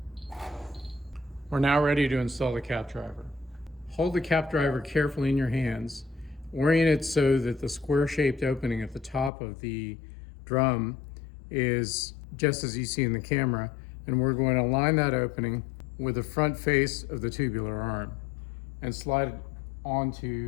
We're now ready to install the cap driver. Hold the cap driver carefully in your hands. Orient it so that the square-shaped opening at the top of the drum is just as you see in the camera, and we're going to align that opening with the front face of the tubular arm and slide it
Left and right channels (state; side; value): drops out; right; at 9.3 s